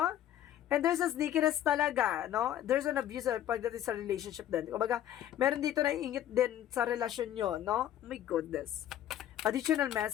And there's a sneakiness talaga, no? There's an abuse pagdating sa relationship din. Kumbaga, meron dito na ingit din sa relasyon nyo, no? Oh my goodness. Additional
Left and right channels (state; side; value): quieter; right; 11.6 dB